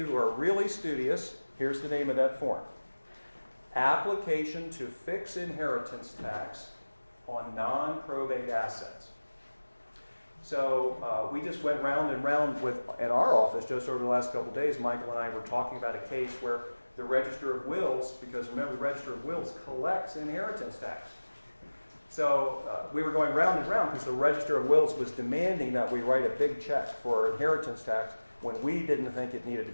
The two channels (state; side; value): inverted; both; correlation -1.00